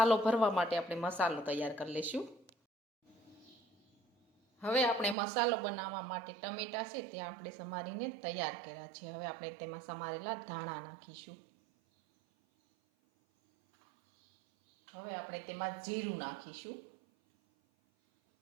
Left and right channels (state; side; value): drops out; left; at 5.2 s